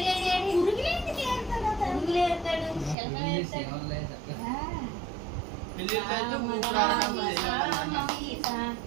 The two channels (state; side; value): drops out; left; at 3.0 s